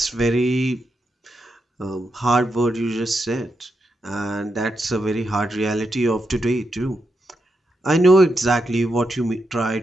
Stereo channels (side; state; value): both; normal; correlation 0.85